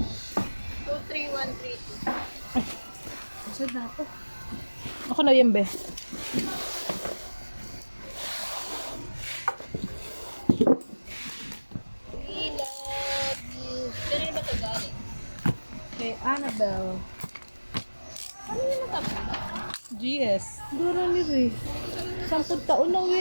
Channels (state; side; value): inverted; both; correlation -1.00